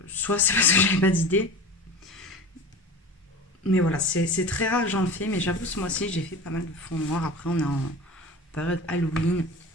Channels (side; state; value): both; normal; correlation 0.34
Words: soit c'est parce que j'avais pas d'idée. Mais voilà, c'est très rare que j'en fais, mais j'avoue, ce mois-ci, j'ai fait pas mal de fond noir. Après, on est en période Halloween,